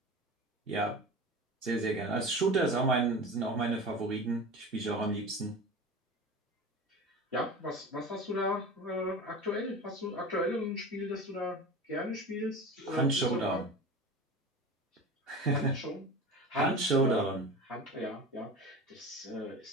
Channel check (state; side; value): normal; both; correlation 0.32